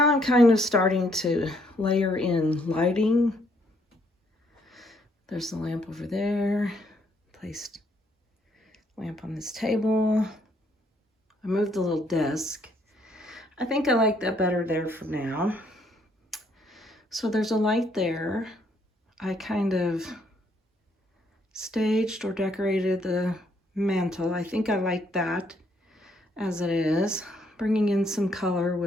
I'm kind of starting to layer in lighting. There's the lamp over there. Placed lamp on this table. I moved the little desk. I think I like that better there for now. So there's a light there. I kind of staged or decorated the mantle. I think I like that as it is. Bringing in some color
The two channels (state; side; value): normal; both; correlation 0.70